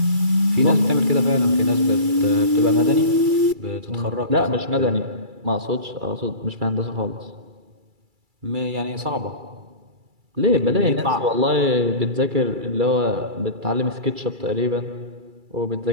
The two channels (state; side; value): late; left; 2.3 ms